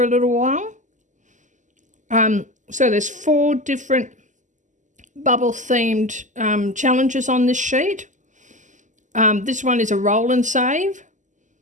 a little while. So there's 4 different bubble themed challenges on this sheet. This one is a roll and save.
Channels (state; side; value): late; left; 0.36 ms